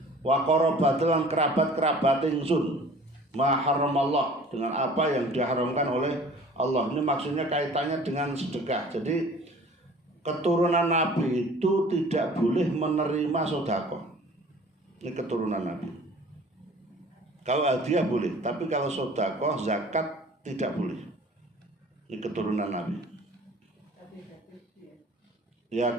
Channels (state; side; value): normal; both; correlation 0.48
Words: wa qarabati lan kerabat-kerabat ingsun ma haramallah dengan apa yang diharamkan oleh Allah. Ini maksudnya kaitannya dengan sedekah. Jadi keturunan Nabi itu tidak boleh menerima sedekah. Ini keturunan Nabi. Kalau hadiah boleh, tapi kalau sedekah zakat tidak boleh. Ini keturunan Nabi. Ya